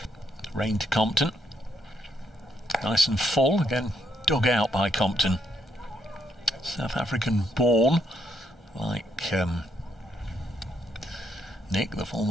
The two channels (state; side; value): normal; both; correlation 0.75